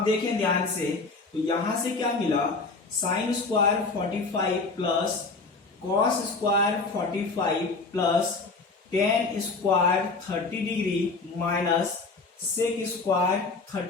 देखें ध्यान से, तो यहां से क्या मिला, sine square 45 plus cos square 45 plus tan square 30 degree minus sec square 30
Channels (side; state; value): right; quieter; 3.9 dB